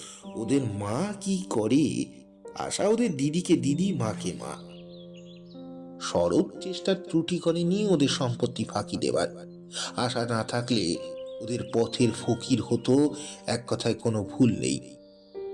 ওদের মা কি করে, আশা ওদের দিদিকে দিদি, মাকে মা। শরৎ চেষ্টার ত্রুটি করেনি ওদের সম্পত্তি ফাঁকি দেবার। আশা না থাকলে ওদের পথের ফকির হতো, এক কথায় কোনো ভুল নেই।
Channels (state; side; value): identical; both; correlation 1.00